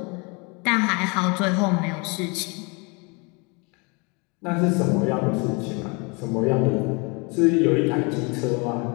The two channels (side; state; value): right; quieter; 30.3 dB